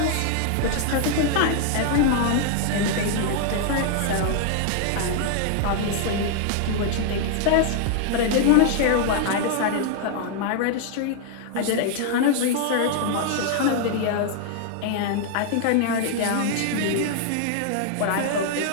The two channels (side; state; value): both; different; correlation 0.00